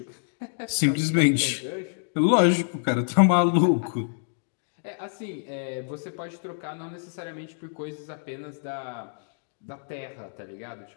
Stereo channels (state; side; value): silent; right; digital silence